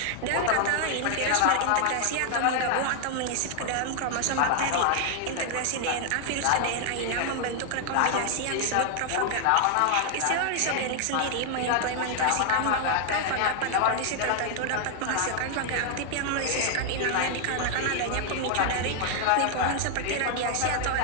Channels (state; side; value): different; both; correlation 0.00